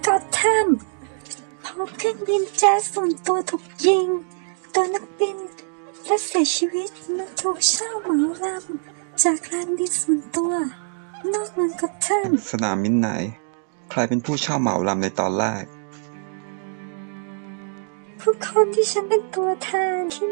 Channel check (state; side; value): silent; left; digital silence